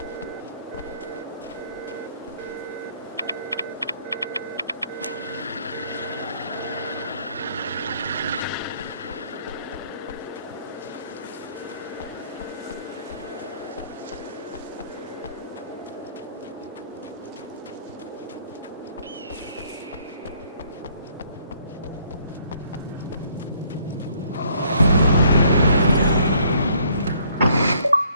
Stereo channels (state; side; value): inverted; both; correlation -0.63